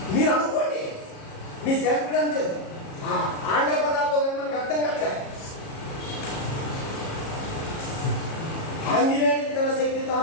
మీరు అనుకోండి మీ సేకరణ ఆంగ్ల పదాల్లో కానీ మనకు అర్థం కావట్లే. ఆంజనేయుడికి తన శక్తి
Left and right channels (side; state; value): right; late; 37 ms